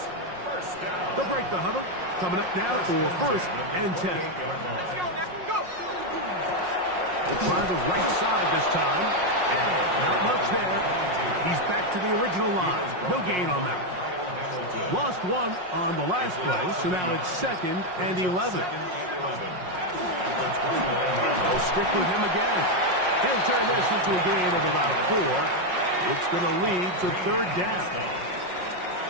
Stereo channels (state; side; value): late; left; 5.5 ms